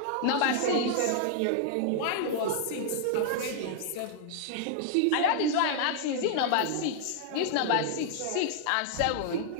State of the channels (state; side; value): different; both; correlation 0.00